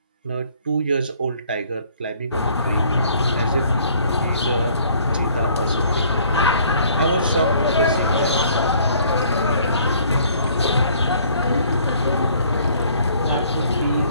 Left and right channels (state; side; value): inverted; both; correlation -0.59